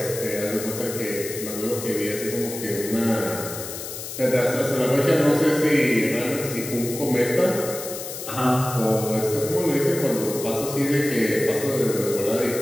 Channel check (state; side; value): noise; left; hiss, 9 dB below the sound